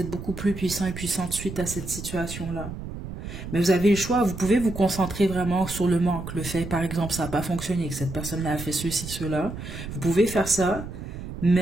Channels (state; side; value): noise; right; rumble, 9 dB below the sound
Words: beaucoup plus puissant et puissante suite à cette situation-là. Mais vous avez le choix, vous pouvez vous concentrer vraiment sur le manque. Le fait, par exemple, ça n'a pas fonctionné, que cette personne-là a fait ceci, cela. Vous pouvez faire ça,